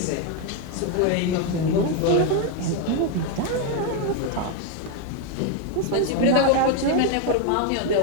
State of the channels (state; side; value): different; both; correlation 0.01